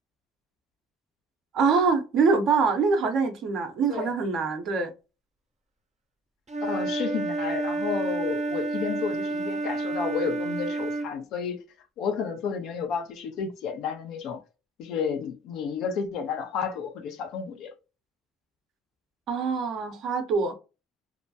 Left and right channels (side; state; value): both; normal; correlation 0.49